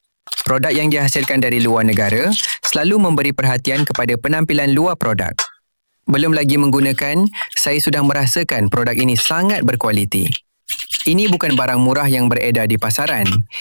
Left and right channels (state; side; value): inverted; both; correlation -1.00